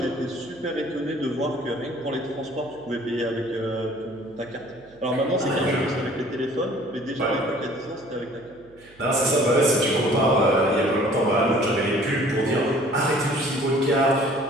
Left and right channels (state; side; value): noise; right; hum, 27 dB below the sound